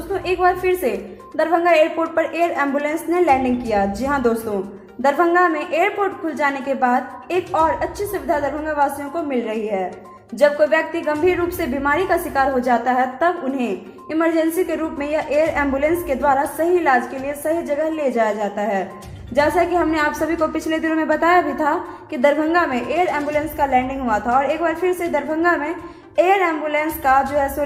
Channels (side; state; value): both; identical; correlation 1.00